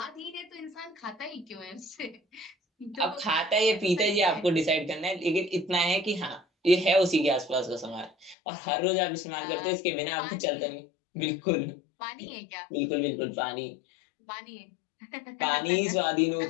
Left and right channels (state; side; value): drops out; right; at 8.3 s